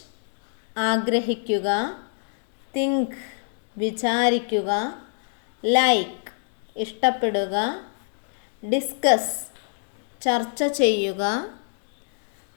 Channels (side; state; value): right; silent; digital silence